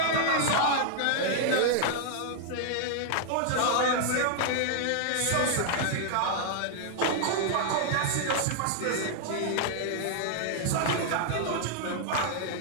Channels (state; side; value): different; both; correlation -0.01